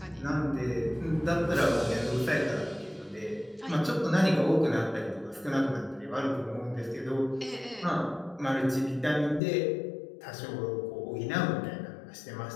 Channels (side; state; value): right; drops out; at 9.4 s